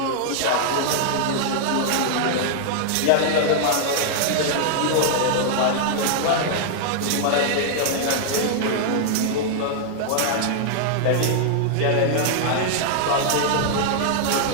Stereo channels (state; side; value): different; both; correlation -0.01